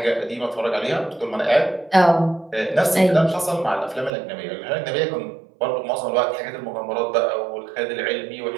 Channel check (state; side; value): drops out; left; at 4.1 s